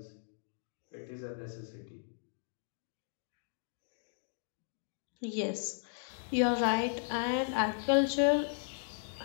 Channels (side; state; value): right; silent; digital silence